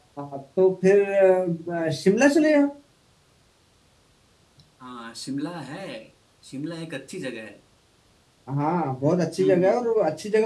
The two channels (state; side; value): identical; both; correlation 1.00